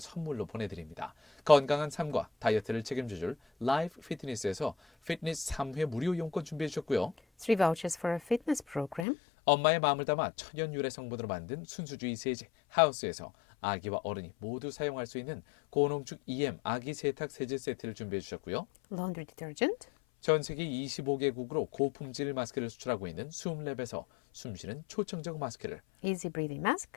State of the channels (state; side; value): drops out; right; at 9.1 s